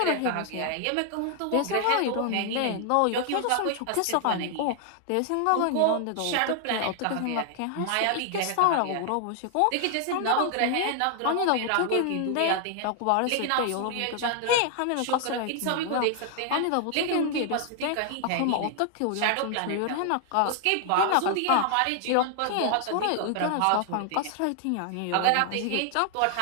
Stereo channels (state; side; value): different; both; correlation 0.00